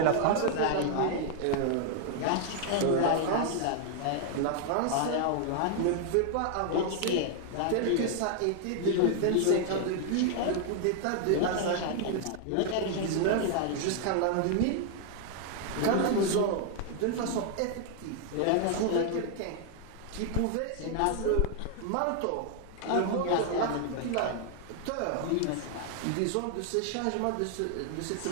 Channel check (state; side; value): different; both; correlation 0.00